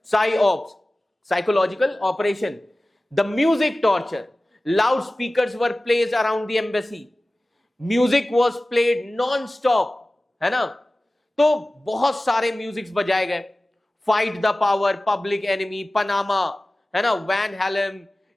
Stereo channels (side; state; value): both; normal; correlation 0.97